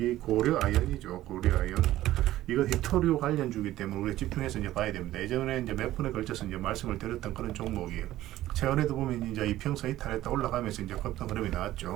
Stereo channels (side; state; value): left; quieter; 14.7 dB